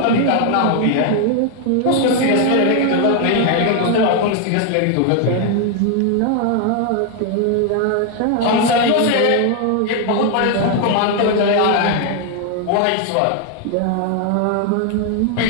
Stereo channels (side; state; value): both; different; correlation 0.00